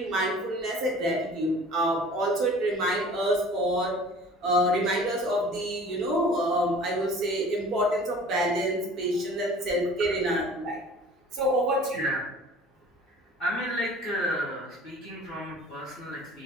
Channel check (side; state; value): both; normal; correlation 0.46